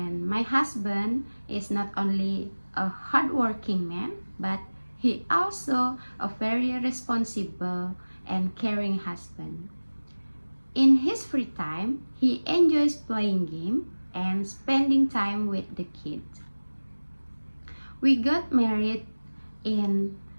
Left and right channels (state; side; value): inverted; both; correlation -1.00